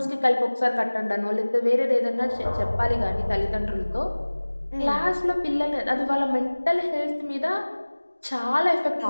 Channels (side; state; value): both; inverted; correlation -1.00